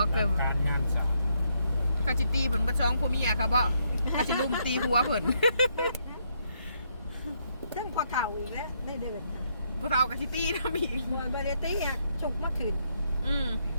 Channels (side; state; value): both; inverted; correlation -0.74